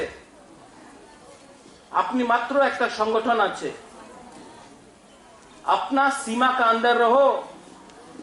আপনি মাত্র একটা সংগঠন আছে। अपना सीमा का अंदर रहो,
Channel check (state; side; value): identical; both; correlation 1.00